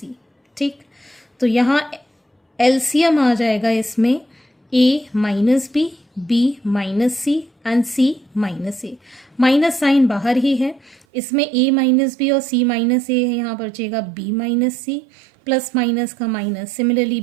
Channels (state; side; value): drops out; left; at 11.1 s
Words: ठीक, तो यहाँ एलसीएम आ जाएगा इसमें a minus B minus C and c minus A. Minus sign बाहर ही है, इसमें a माइनस बी और c माइनस ए है, यहाँ बचेगा b minus C plus minus का minus. Similarly